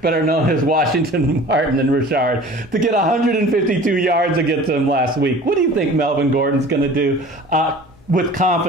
better known as Washington, Martin, and Richard, to get 152 yards against them last week. What do you think Melvin Gordon's going to do? With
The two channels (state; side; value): normal; both; correlation 0.43